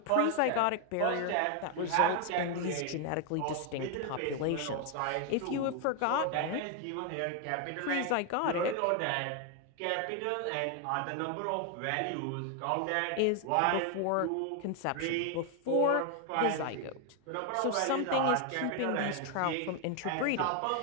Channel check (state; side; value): different; both; correlation 0.01